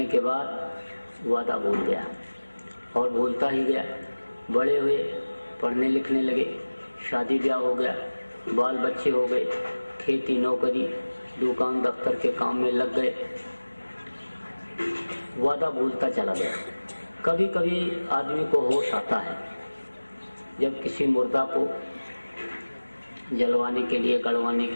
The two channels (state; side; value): inverted; both; correlation -1.00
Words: के बाद वादा भूल गया, और भूलता ही गया। बड़े हुए, पढ़ने लिखने लगे, शादी ब्याह हो गया, बाल बच्चे हो गए, खेती नौकरी दुकान दफ्तर के काम में लग गए, वादा भूलता चला गया। कभी कभी आदमी को होश आता है जब किसी मुर्दा को जलवाने के लिए, गड़वाने